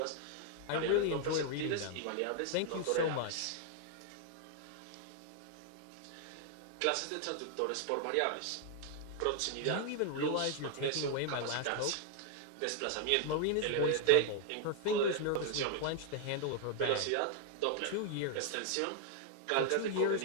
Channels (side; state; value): both; different; correlation 0.00